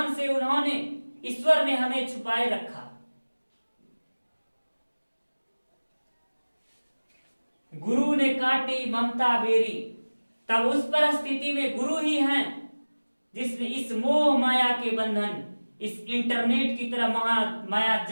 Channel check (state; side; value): inverted; both; correlation -1.00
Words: से उन्होंने, ईश्वर ने हमें छुपाए रखा। गुरु ने काटी ममता बेरी, तब उस परिस्थिति में गुरु ही हैं जिसने इस मोह माया के बंधन, इस इंटरनेट की तरह माया